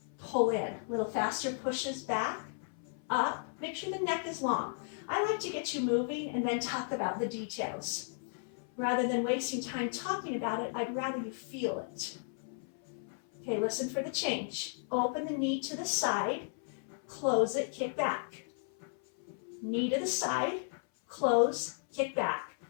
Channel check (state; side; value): silent; right; 55 dB below the other